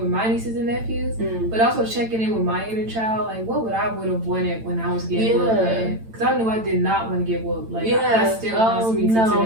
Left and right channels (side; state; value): left; late; 8.9 ms